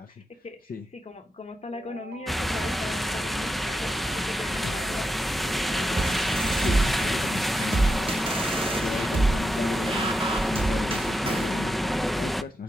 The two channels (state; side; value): normal; both; correlation 0.87